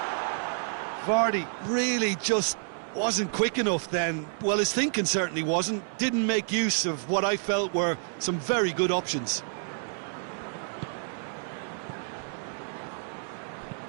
Vardy really just wasn't quick enough then. Well, his thinking certainly wasn't. Didn't make use of what I felt were some very good options.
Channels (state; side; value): silent; left; digital silence